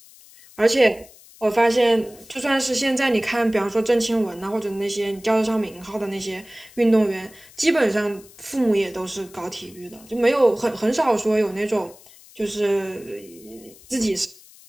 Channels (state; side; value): noise; left; hiss, 23 dB below the sound